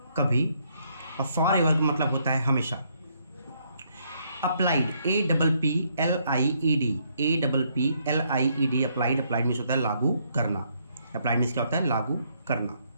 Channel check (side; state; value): both; inverted; correlation -0.71